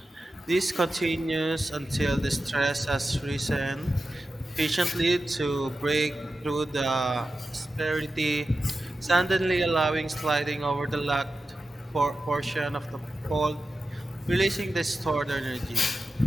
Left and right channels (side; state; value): both; normal; correlation 0.92